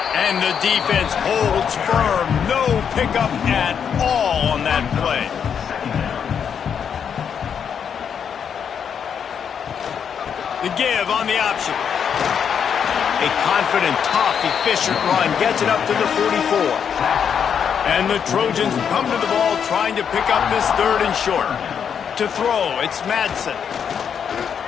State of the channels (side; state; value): right; quieter; 7.6 dB